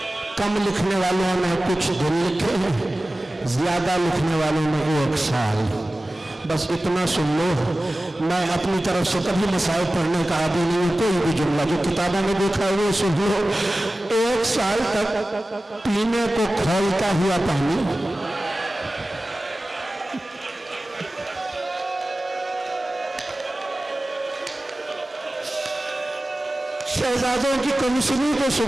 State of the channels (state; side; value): normal; both; correlation 0.96